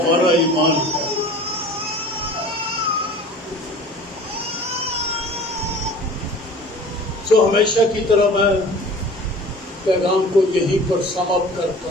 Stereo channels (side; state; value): both; normal; correlation 0.43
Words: ईमान है। तो हमेशा की तरह मैं पैगाम को यहीं पर समाप्त